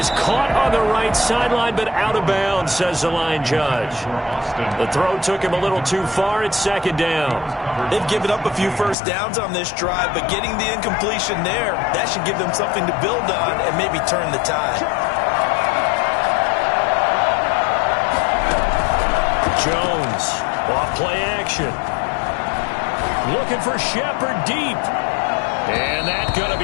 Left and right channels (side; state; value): right; drops out; at 9.0 s